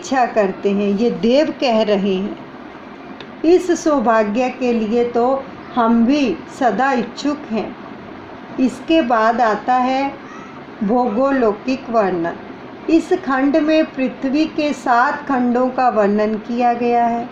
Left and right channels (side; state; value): both; identical; correlation 1.00